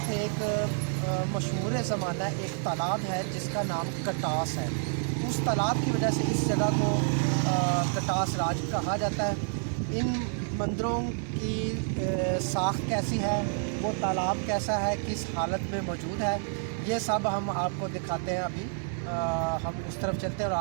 एक मशहूर ज़माना एक तालाब है जिसका नाम कटास है। उस तालाब की वजह से इस जगह को कटास राज कहा जाता है। इन मंदिरों की साख्त कैसी है, वो तालाब कैसा है, किस हालत में मौजूद है, ये सब हम आपको दिखाते हैं। अभी हम उस तरफ चलते हैं और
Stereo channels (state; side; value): silent; left; 59 dB below the other